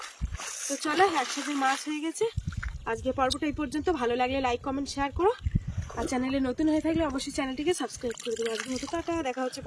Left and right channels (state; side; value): identical; both; correlation 1.00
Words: তো চলো, একসাথে মাছ হয়ে গেছে। আজকে পর্বটা এই পর্যন্ত। ভালো লাগলে লাইক কমেন্ট শেয়ার করো, আর চ্যানেলে নতুন হয়ে থাকলে অবশ্যই চ্যানেলটিকে সাবস্ক্রাইব করে দেবো। আজকে মতো টাটা, দেখা হচ্ছে